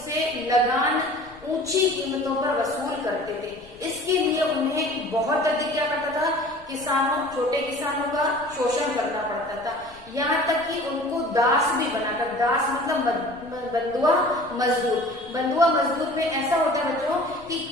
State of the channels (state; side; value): noise; left; rumble, 26 dB below the sound